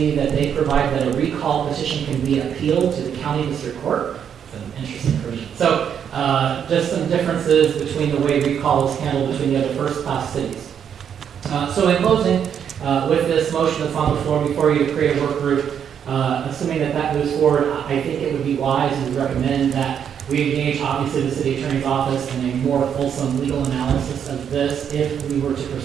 that they provide that a recall petition can be appealed to the county district court. It's an interesting provision. So just some differences between the way recall is handled between the other first-class cities. So in closing, with this motion that's on the floor before you to create a work group, assuming that that moves forward, I think it would be wise and would recommend that we engage, obviously, the city attorney's office in a more fulsome legal analysis of this if we were to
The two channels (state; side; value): quieter; left; 8.3 dB